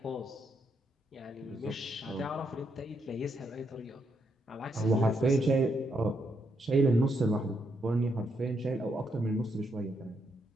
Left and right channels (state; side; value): normal; both; correlation 0.78